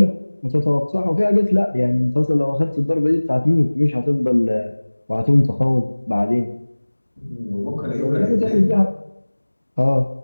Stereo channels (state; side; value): inverted; both; correlation -1.00